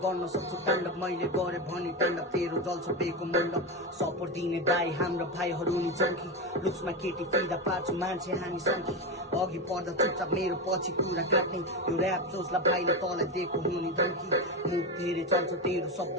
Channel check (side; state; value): both; normal; correlation 0.15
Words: गर्न सक्छु ताण्डव मैले गरे भने ताण्डव तेरो जल्छ बेको मण्डप सपोर्ट दिने दाइ हाम्रो भाइहरू नि चङ्की लुक्समा केटी फिदा पार्छु मान्छे हामी सङ्की अघि पर्दा चुपचाप मेरो पछि कुरा काट्ने यो ऱ्याप सोचलाई भाइले तँलाई दिएको हुने धम्की मुख धेरै चल्छ तेरो शब्द